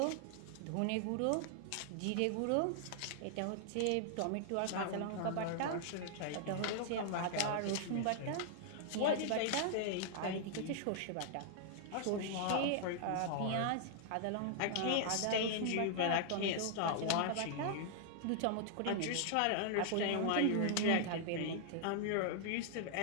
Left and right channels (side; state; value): both; different; correlation -0.01